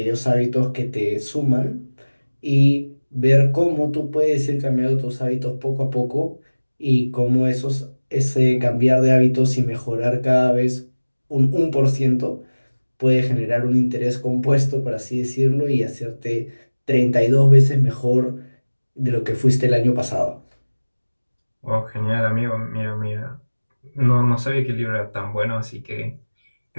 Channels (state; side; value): inverted; both; correlation -1.00